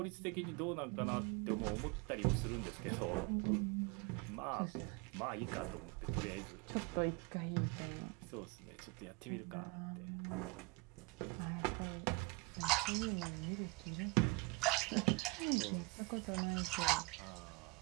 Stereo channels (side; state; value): left; quieter; 26.8 dB